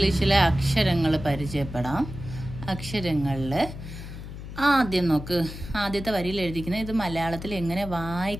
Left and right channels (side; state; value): left; noise; hum, 11 dB below the sound